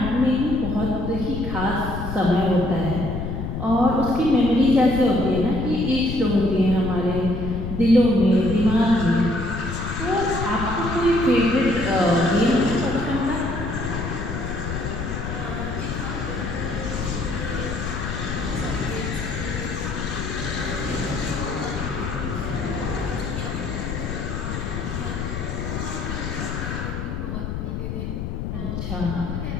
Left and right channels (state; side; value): noise; left; rumble, 4 dB below the sound